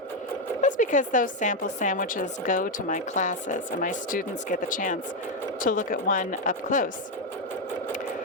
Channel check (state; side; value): normal; both; correlation 0.05